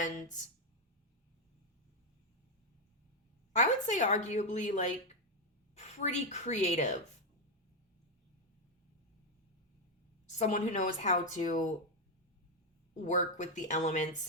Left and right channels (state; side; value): normal; both; correlation 0.03